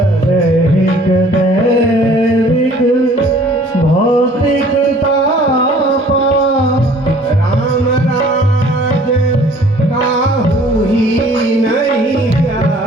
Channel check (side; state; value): both; normal; correlation 0.54